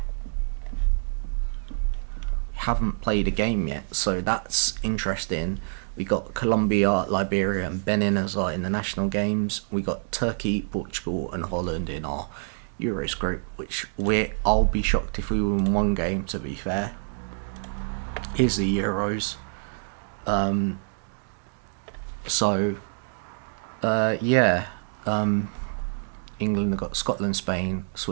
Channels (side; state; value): left; silent; digital silence